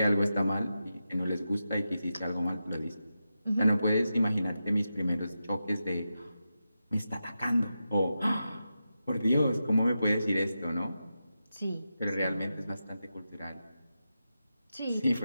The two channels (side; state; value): both; inverted; correlation -0.90